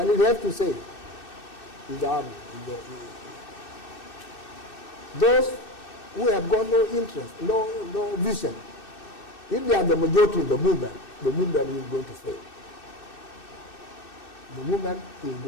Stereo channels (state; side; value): late; right; 2.6 ms